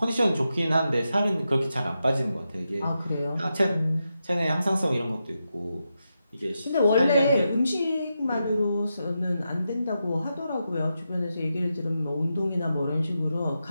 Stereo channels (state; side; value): inverted; both; correlation -0.87